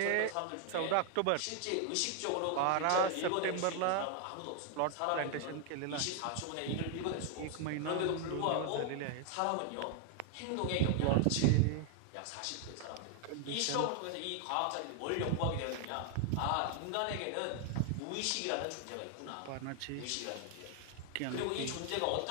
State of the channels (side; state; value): both; different; correlation 0.00